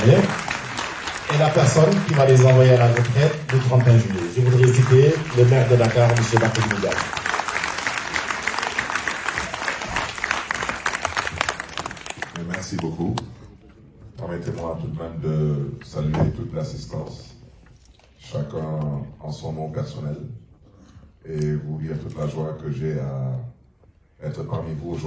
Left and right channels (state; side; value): identical; both; correlation 1.00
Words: et la personne qui va les envoyer à la retraite le 31 juillet. Je voudrais citer le maire de Dakar, M. Barthélémy Dias. Merci beaucoup. Permettez-moi tout de même de saluer toute l'assistance, chacun en son nom personnel, et vous dire toute la joie que j'ai à être parmi vous